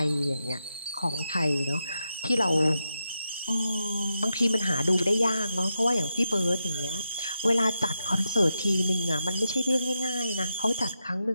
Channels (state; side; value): inverted; both; correlation -0.86